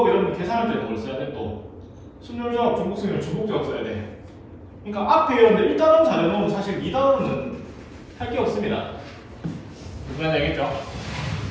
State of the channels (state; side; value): identical; both; correlation 1.00